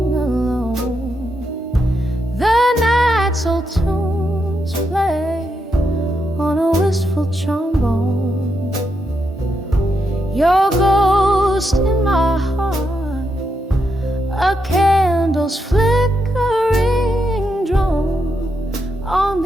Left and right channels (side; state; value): both; normal; correlation 0.82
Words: trombone. Your ghost in my heart, a candle's flickering drone on